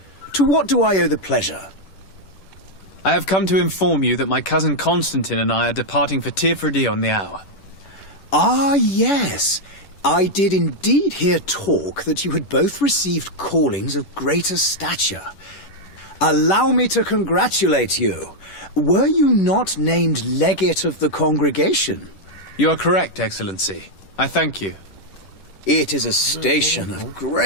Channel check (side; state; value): right; late; 10 ms